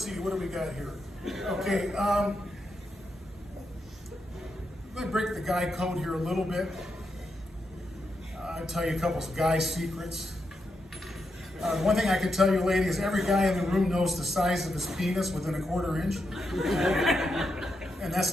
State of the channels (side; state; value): both; normal; correlation 0.84